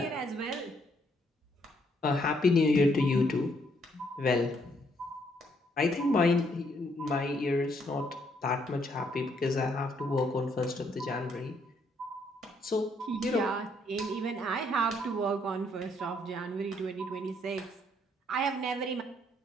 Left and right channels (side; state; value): both; normal; correlation 0.70